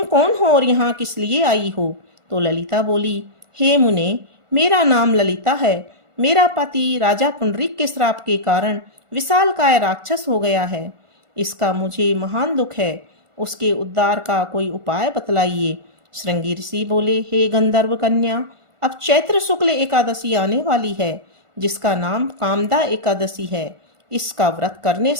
कौन हो और यहाँ किस लिए आई हो? तो ललिता बोली, हे मुने, मेरा नाम ललिता है। मेरा पति राजा पुंडरीक के श्राप के कारण विशालकाय राक्षस हो गया है। इसका मुझे महान दुख है। उसके उद्धार का कोई उपाय बतलाइए। श्रृंगी ऋषि बोले, हे गंधर्व कन्या, अब चैत्र शुक्ल एकादशी आने वाली है, जिसका नाम कामदा एकादशी है। इसका व्रत करने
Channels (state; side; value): late; left; 1.4 ms